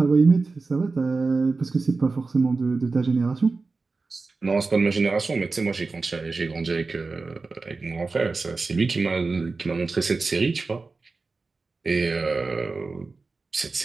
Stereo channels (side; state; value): left; quieter; 3.9 dB